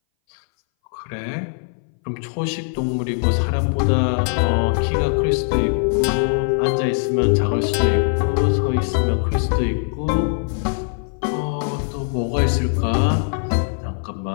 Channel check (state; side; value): silent; right; 61 dB below the other